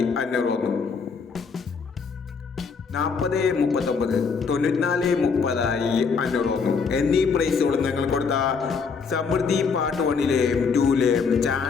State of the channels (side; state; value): right; quieter; 5.4 dB